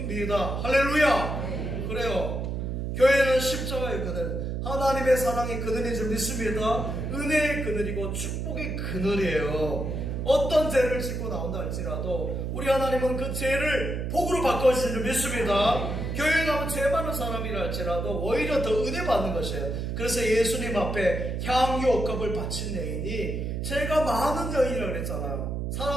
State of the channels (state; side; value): noise; right; hum, 3 dB below the sound